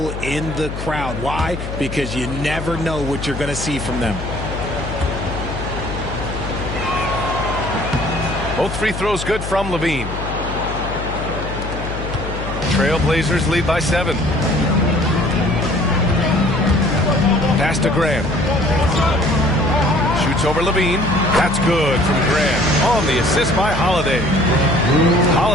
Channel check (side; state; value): left; noise; hum, 7 dB below the sound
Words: in the crowd. Why? Because you never know what you're going to see from them. Both free throws good from Levine. Trailblazers lead by 7. Pass to Grant. Shoots over Levine. That's good from Grant. On the assist by Holiday.